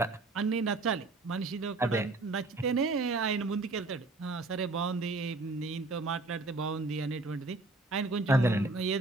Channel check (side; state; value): left; quieter; 3.2 dB